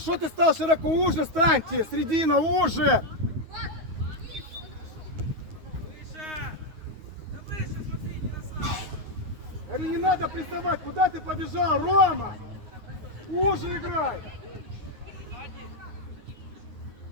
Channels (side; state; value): left; late; 9.3 ms